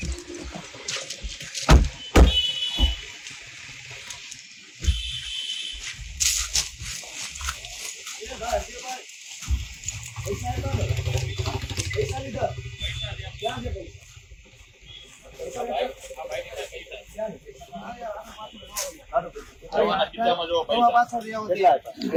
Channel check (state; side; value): identical; both; correlation 1.00